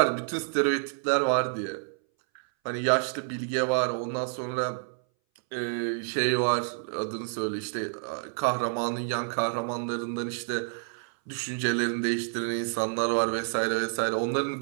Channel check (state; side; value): silent; left; 59 dB below the other